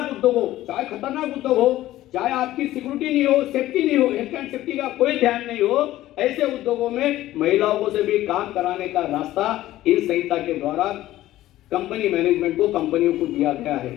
उद्योग हो, चाहे खतरनाक उद्योग हो, चाहे आपकी सिक्योरिटी नहीं हो, सेफ्टी नहीं हो, हेल्थ एंड सेफ्टी का कोई ध्यान नहीं हो, ऐसे उद्योगों में महिलाओं को से भी काम कराने का रास्ता इस संहिता के द्वारा कंपनी मैनेजमेंट को, कंपनियों को दिया गया है।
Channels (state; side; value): quieter; right; 15.0 dB